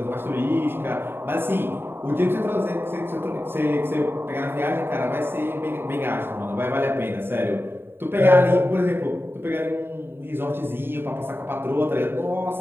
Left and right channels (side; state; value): left; late; 0.11 ms